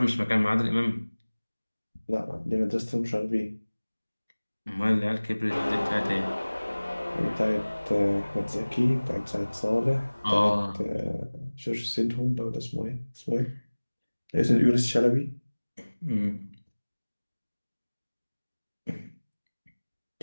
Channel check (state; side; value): inverted; both; correlation -1.00